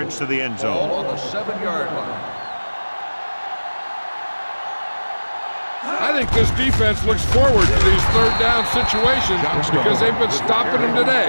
to the end Ball zone. on the 7-yard line. I think this defense looks forward to these third down situations because they've been stopping them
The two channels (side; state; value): both; inverted; correlation -1.00